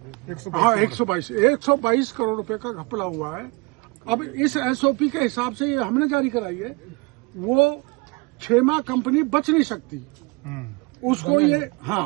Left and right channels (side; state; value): left; quieter; 27.3 dB